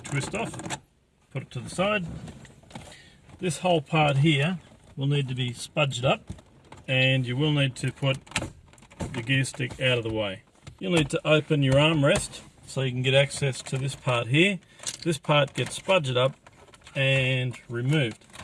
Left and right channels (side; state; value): both; identical; correlation 1.00